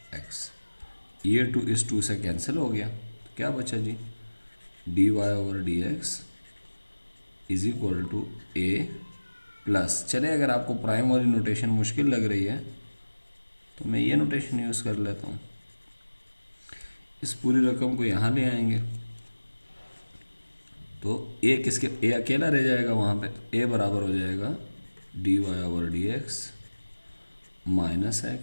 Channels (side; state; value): both; inverted; correlation -1.00